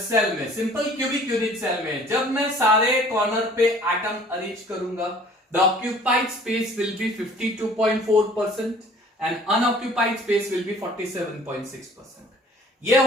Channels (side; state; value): both; normal; correlation 0.52